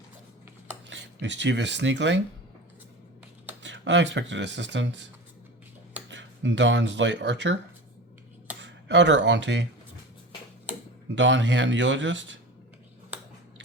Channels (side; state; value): both; normal; correlation 0.32